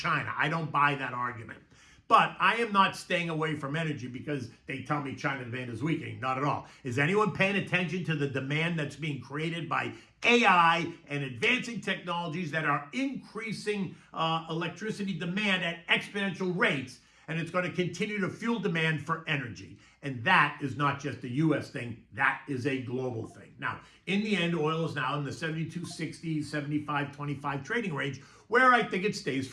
I don't buy that argument. But I am not staying away from energy because they tell me China demand is weakening. Not at all. Is anyone paying attention to the demand that's being created by AI and advancing technologies that are increasing electricity demand at exponential rates? And it's going to continue to fuel demand for energy. And that is not just a U.S. thing. That is a global thing. Now, in the end, oil is now in the 72.60, 75.25 trading range, where I think it stays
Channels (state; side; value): identical; both; correlation 1.00